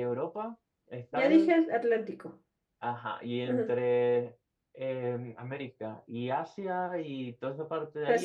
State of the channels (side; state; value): both; identical; correlation 1.00